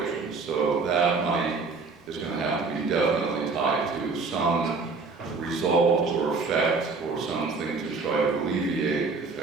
So that money is going to have to be definitely tied to some result or effect or something to try to alleviate the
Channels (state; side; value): quieter; left; 4.3 dB